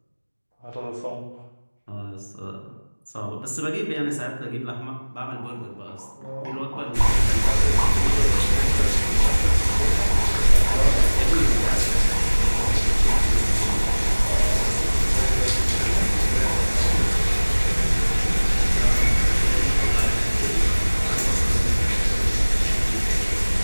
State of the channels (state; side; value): inverted; both; correlation -1.00